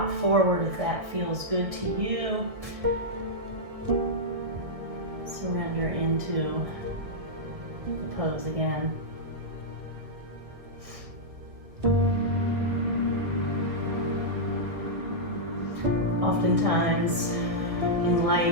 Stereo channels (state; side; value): late; left; 1.8 ms